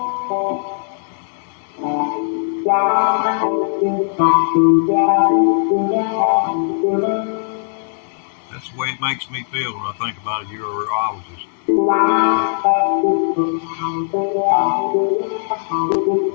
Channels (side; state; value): right; silent; digital silence